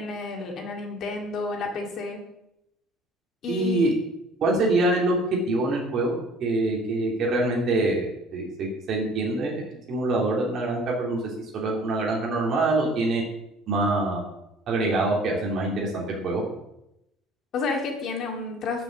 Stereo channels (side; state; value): both; normal; correlation 0.50